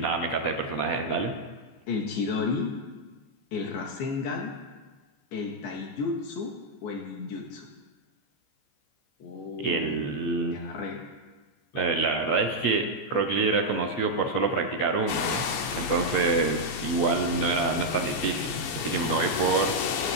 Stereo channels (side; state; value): right; late; 14 ms